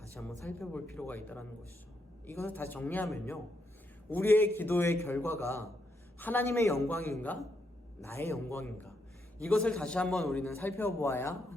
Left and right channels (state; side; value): normal; both; correlation 0.79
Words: 한번 살펴볼 필요가 있다는 것이죠. 이것을 다시 정리하면요, 우리의 기도의 결과가 하나님의 영광인가 나의 영광인가, 이것을 다시 한번 우리는 살펴보아야